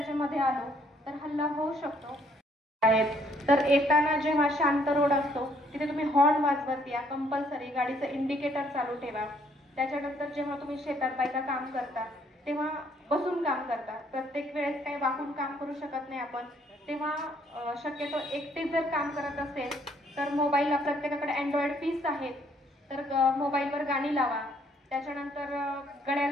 मध्ये आलो तर हल्ला होऊ शकतो. तर येताना जेव्हा शांत रोड असतो तिथे तुम्ही हॉर्न वाजवत या, कंपल्सरी गाडीचं इंडिकेटर चालू ठेवा. त्याच्यानंतर जेव्हा तुम्ही शेतात बायका काम करता तेव्हा बसून काम करता, प्रत्येक वेळेस काही वाकून काम करू शकत नाही आपण, तेव्हा शक्यतो एकटे जर काम करत असेल तर मोबाईलला प्रत्येकाकडे अँड्रॉइड पीस आहेत, तर मोबाईलवर गाणी लावा. त्याच्यानंतर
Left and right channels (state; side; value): normal; both; correlation 0.66